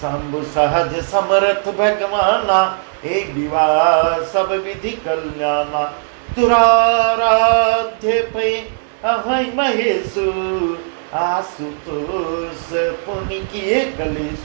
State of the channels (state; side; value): silent; left; 68 dB below the other